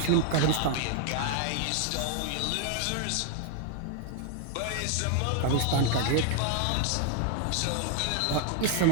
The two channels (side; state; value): both; different; correlation 0.00